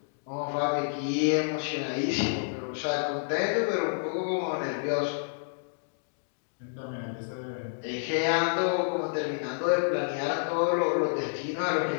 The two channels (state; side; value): silent; right; digital silence